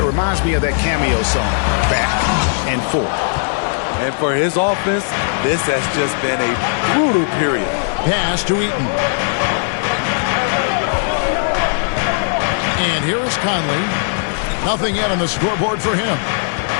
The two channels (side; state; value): right; silent; digital silence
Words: it reminds me of that cameo song, Back and Forth. And for his offense, this has just been a brutal period. Pass to Eaton. And here is Conley. Nothing yet on the scoreboard for him.